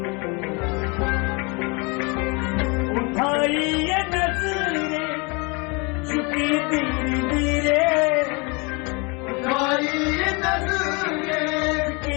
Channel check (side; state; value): right; quieter; 29.9 dB